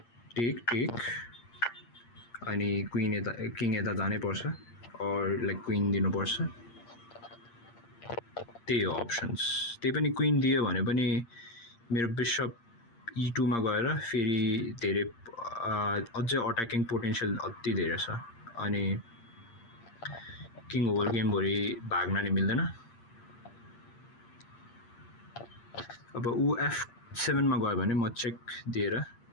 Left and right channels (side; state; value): right; late; 8.6 ms